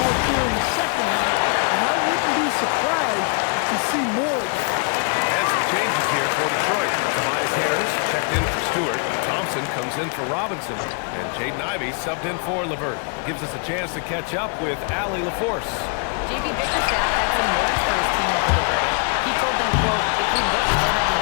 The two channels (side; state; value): right; quieter; 39.0 dB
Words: mark here in the second half, and I wouldn't be surprised to see more of that. And some changes here for Detroit. Tobias Harris checked in for Stewart. Thompson comes in for Robinson. And Jaden Ivey subbed in for LeVert. Gives us a chance to catch up with Allie LaForce. JB Bickerstaff had some words for his team over the break. He told them, quote, if we'd worked harder on